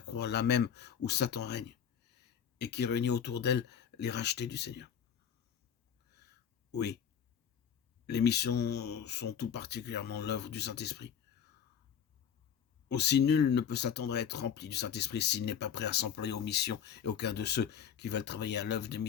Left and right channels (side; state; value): right; quieter; 8.3 dB